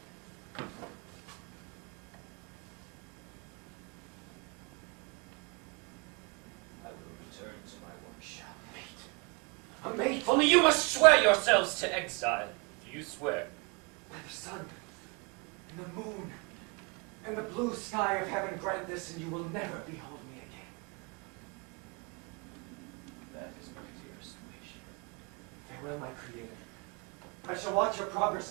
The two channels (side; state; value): left; quieter; 30.8 dB